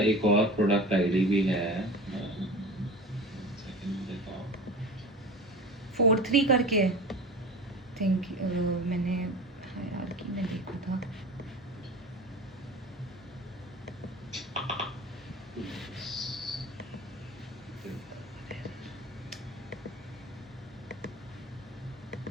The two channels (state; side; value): normal; both; correlation 0.34